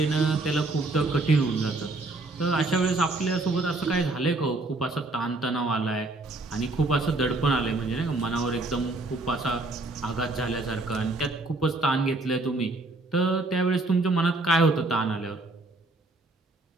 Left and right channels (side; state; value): left; quieter; 3.0 dB